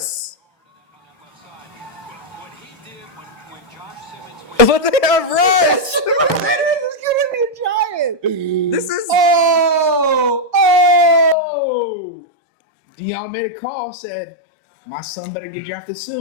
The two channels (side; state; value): right; drops out; at 11.4 s